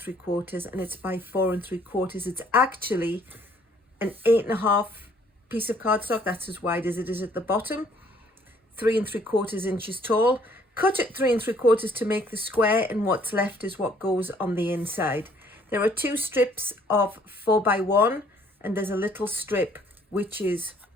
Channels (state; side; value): normal; both; correlation 0.61